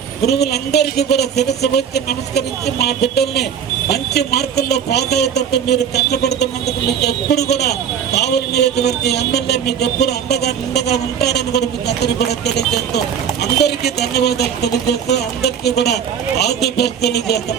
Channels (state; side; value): quieter; left; 8.0 dB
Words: గురువులందరికీ కూడా శిరస్సు వచ్చి నమస్కరించి మా బిడ్డల్ని మంచి మార్కుల్లో పాస్ అయ్యేటట్టు మీరు కష్టపడుతున్నందుకు మీకు ఎప్పుడు కూడా కావలి నియోజకవర్గ ఎమ్మెల్యే మీకు ఎప్పుడు నిండగా ఉంటారని కూడా మీకు అందరికీ కూడా తెలియజేస్తూ అందరికీ ధన్యవాదాలు తెలియజేస్తూ అందరికీ కూడా ఆల్ ది బెస్ట్